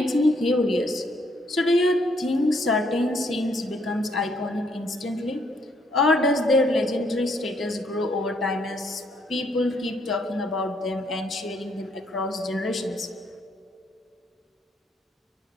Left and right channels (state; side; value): normal; both; correlation 0.70